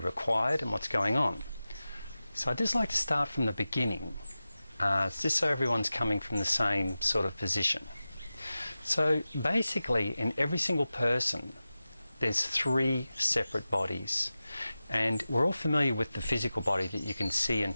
and what's going on. So I'd just like to start from the beginning, just so everyone's coming from the same sort of position. So basically, in every single person, there's 3 separate bodies. And we're all familiar with the physical body that you can see and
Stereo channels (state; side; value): inverted; both; correlation -0.94